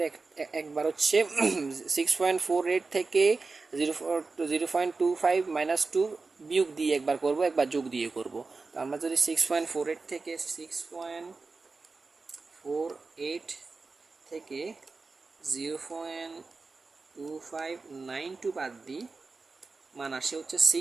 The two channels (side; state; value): left; quieter; 4.0 dB